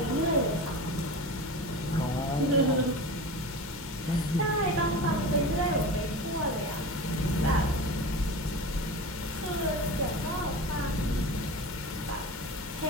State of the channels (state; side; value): normal; both; correlation 0.31